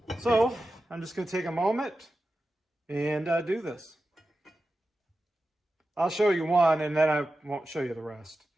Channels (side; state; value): both; normal; correlation 0.92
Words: So I'm just going to take a moment and do this. I'll show you one, and then I won't show you the rest.